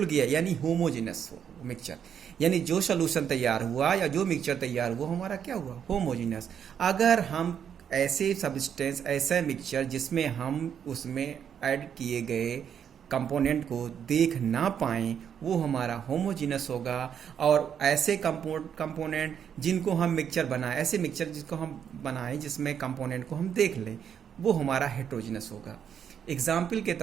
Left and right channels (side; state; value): left; quieter; 8.3 dB